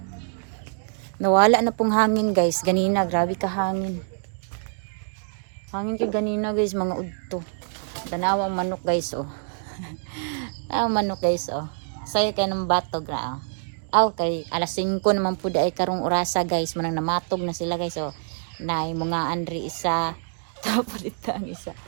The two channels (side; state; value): left; silent; digital silence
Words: Nawala na pong hangin guys. Ganina, grabe ka hangin. Hangin ka ganina guys, mga udto. Tanawang manok guys oh. Tanawang manok guys oh. Sayo kay ng batog na oh. Aw kay alas 5 naman po ay karong orasa guys. Manang namatog na sila guys oh. Nay mga andri isa. Tapos dito ang isa.